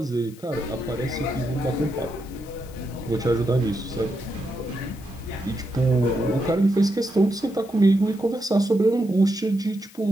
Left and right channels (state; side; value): noise; left; hiss, 23 dB below the sound